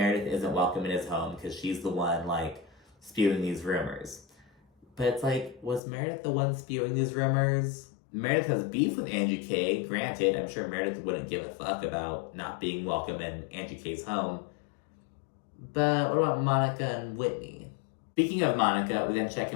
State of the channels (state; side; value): drops out; right; at 5.8 s